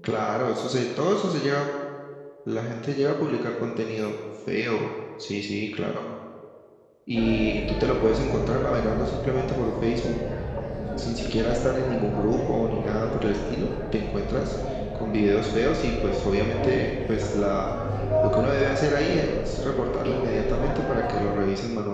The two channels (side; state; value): both; identical; correlation 1.00